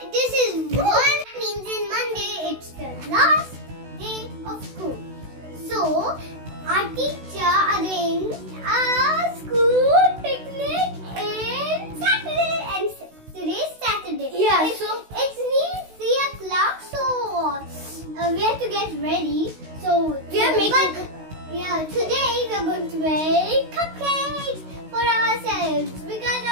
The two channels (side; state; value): left; late; 16 ms